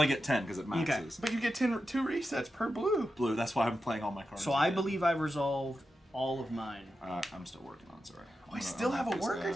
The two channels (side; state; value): both; normal; correlation 0.90